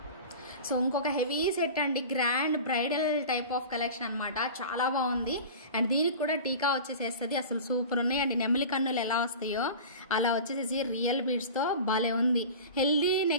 సో ఇంకొక హెవీ సెట్ అండి, grand bridal type of collection అనమాట. చాలా బాగుంది. అండ్ దీనికి కూడా టీకా వచ్చేసేస్తుంది. అసలు సూపర్ ఉన్నాయి అండి. నెమలి కన్నులు ఎలా వస్తాయో అలా వచ్చేసేసి రియల్ బీడ్స్తో భలే ఉంది. హెల్దీ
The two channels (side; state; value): both; inverted; correlation -0.35